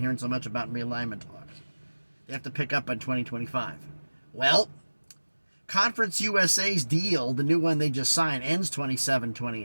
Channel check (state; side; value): inverted; both; correlation -1.00